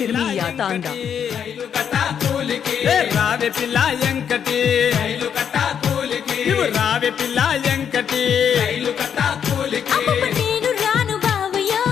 తాండా రైలు కట్టా కూలికి రావే పిల్ల ఎంకటి రైలు కట్టా కూలికి నువ్వు రావే పిల్ల ఎంకటి రైలు కట్టా కూలికి అమ్మమ్మ నేను రాను బావయ్యో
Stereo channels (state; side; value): quieter; right; 8.1 dB